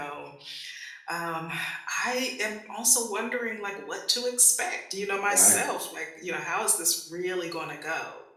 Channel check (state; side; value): identical; both; correlation 1.00